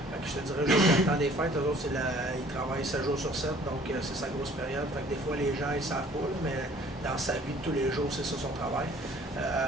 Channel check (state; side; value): normal; both; correlation 0.54